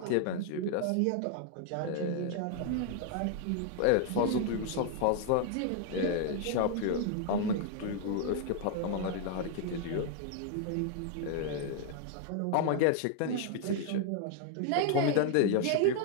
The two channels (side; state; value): both; different; correlation 0.00